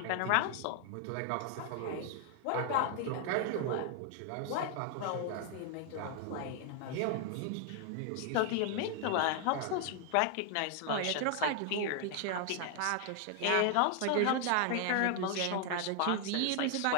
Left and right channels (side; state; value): both; different; correlation 0.00